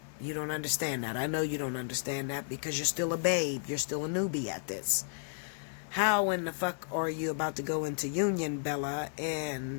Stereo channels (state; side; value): silent; right; 56 dB below the other